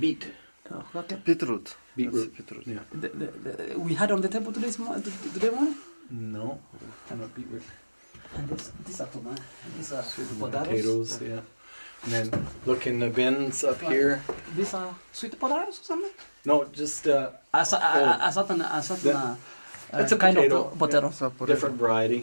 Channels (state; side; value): inverted; both; correlation -1.00